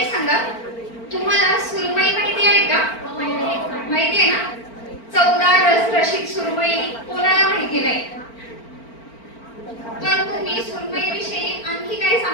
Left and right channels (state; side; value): late; right; 4.4 ms